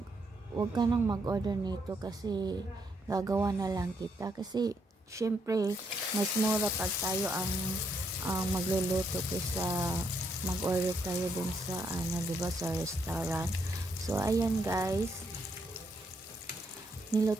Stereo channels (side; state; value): both; normal; correlation 0.75